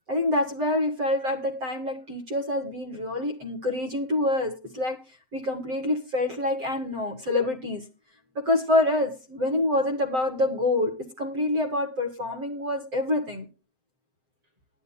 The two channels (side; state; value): left; late; 7.7 ms